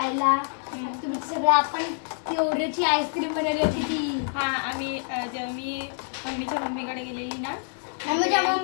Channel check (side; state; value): right; silent; 60 dB below the other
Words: तुम्ही सगळं आपण ती ओरिओची आईस्क्रीम बनवली होती ती. हा आम्ही जेव्हा मी मम्मीच्या मम्मीकडे गेलेली ना. मम्मीच्या